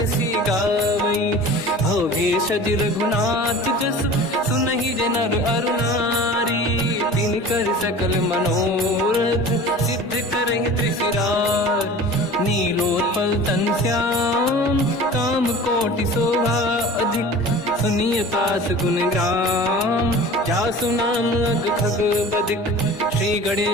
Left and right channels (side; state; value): both; normal; correlation 0.40